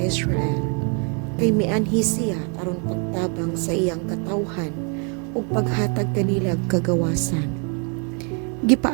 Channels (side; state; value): left; quieter; 37.4 dB